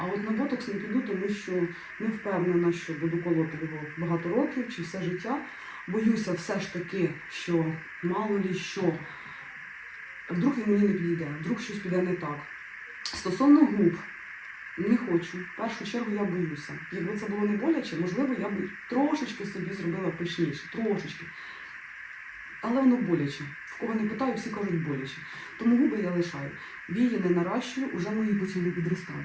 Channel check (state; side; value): identical; both; correlation 1.00